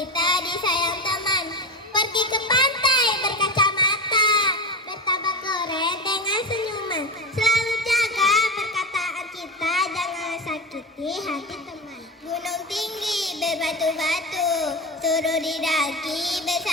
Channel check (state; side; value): normal; both; correlation 0.22